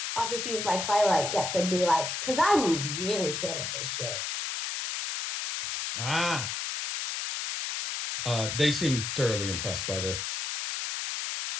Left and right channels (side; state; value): left; noise; hiss, 3 dB below the sound